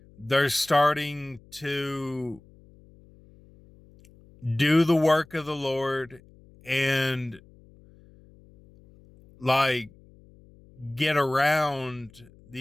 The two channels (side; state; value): left; noise; hum, 26 dB below the sound